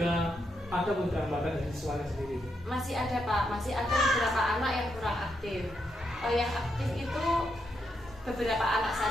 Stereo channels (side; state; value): both; normal; correlation 0.81